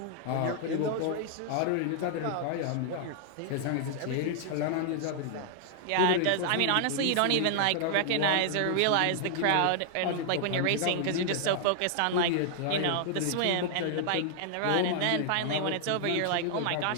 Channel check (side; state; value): both; different; correlation -0.01